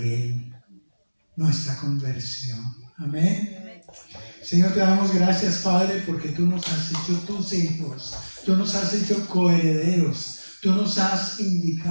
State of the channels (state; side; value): inverted; both; correlation -1.00